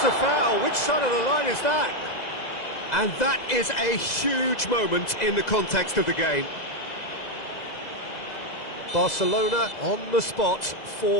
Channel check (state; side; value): late; right; 2.0 ms